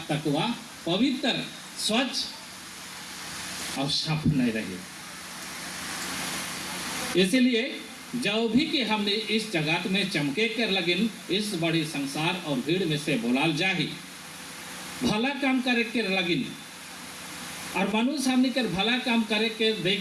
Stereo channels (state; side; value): identical; both; correlation 1.00